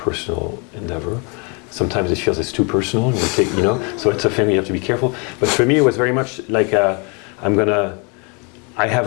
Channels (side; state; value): right; quieter; 33.4 dB